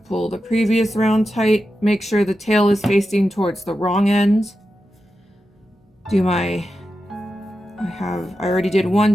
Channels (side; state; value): both; normal; correlation 0.90